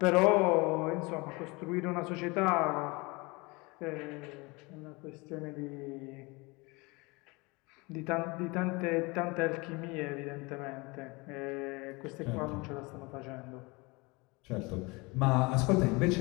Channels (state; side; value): quieter; right; 25.9 dB